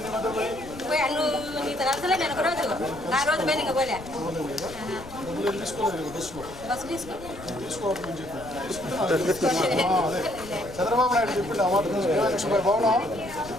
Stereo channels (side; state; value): left; noise; rumble, 16 dB below the sound